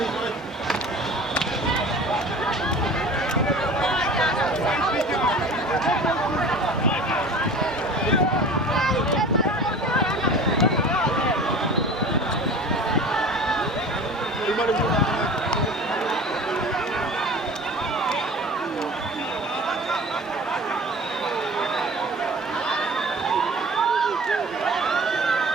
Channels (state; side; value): normal; both; correlation 0.40